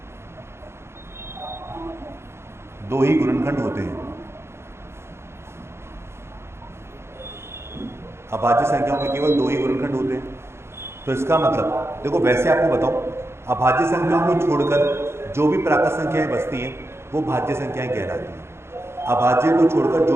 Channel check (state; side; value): late; left; 0.12 ms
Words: 2 ही गुणनखंड होते हैं। अभाज्य संख्याओं के केवल 2 ही गुणनखंड होते हैं। तो इसका मतलब देखो, वैसे आपको बताऊं, अभाज्य संख्याओं को छोड़कर जो भी प्राकृत संख्याएं बचती हैं वो भाज्य संख्याएं कहलाती हैं। अभाज्य को छोड़कर जो